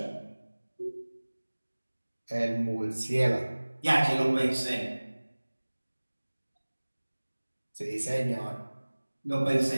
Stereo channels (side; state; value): both; inverted; correlation -1.00